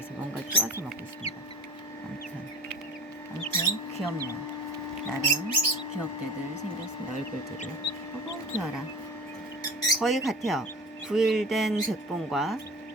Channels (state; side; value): normal; both; correlation 0.36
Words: 뭔가를 쪼아서 먹고 있습니다. 아무튼 귀엽네요. 나름 귀엽게들 생겼습니다. 얼굴들이. 귀여워라. 거의 같아요. 9일 된 백봉과